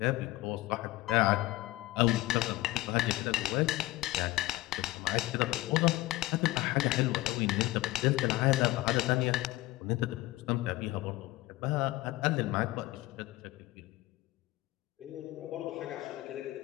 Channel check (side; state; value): right; quieter; 18.6 dB